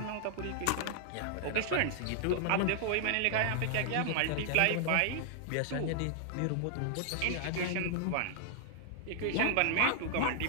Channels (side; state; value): both; different; correlation 0.00